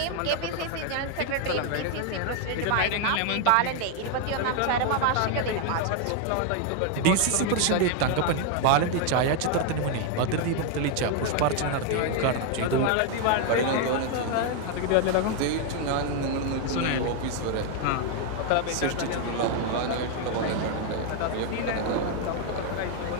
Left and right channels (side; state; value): both; different; correlation 0.01